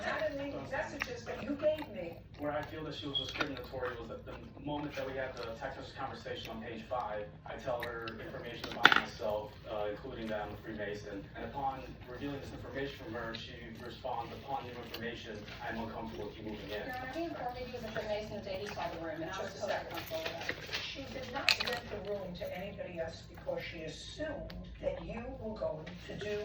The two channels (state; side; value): identical; both; correlation 1.00